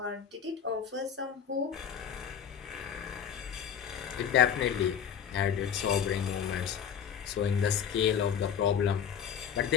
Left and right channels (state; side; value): quieter; right; 8.1 dB